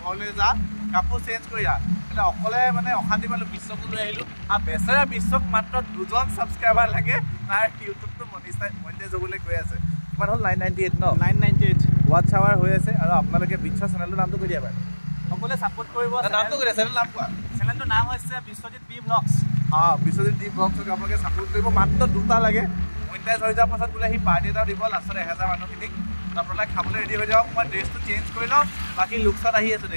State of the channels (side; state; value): both; inverted; correlation -1.00